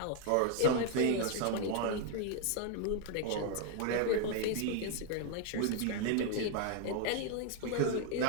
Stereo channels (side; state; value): both; different; correlation 0.01